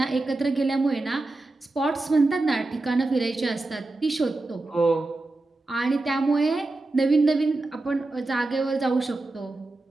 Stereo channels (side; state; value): left; quieter; 3.0 dB